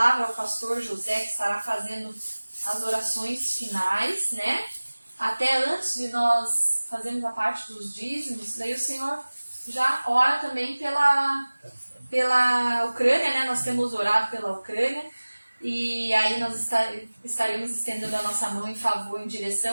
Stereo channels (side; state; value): both; inverted; correlation -1.00